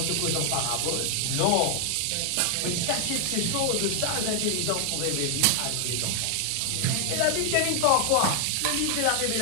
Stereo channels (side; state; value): both; different; correlation 0.00